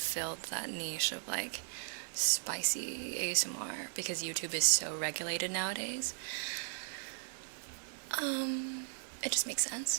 that niche of like spicy ASMR because YouTube is so regulated nowadays. It just makes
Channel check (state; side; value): silent; left; digital silence